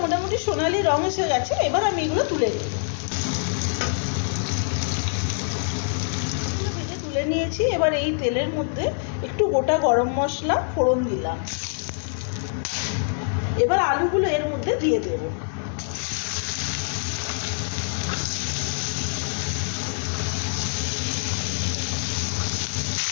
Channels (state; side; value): silent; right; digital silence